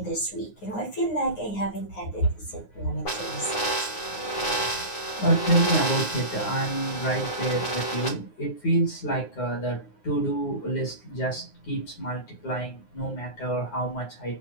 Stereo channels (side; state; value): right; late; 9.6 ms